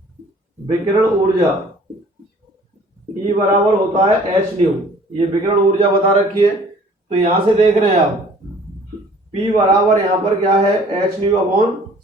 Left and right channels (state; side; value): normal; both; correlation 0.53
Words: विकिरण ऊर्जा E बराबर होता है एच न्यू, ये विकिरण ऊर्जा बता रखी है। तो यहां से देख रहे हैं आप P बराबर यहाँ पर क्या है एच न्यू अपॉन